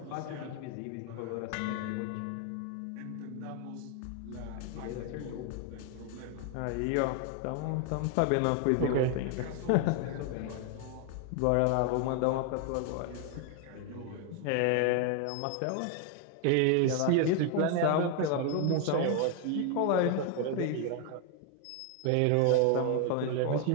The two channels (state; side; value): different; both; correlation 0.01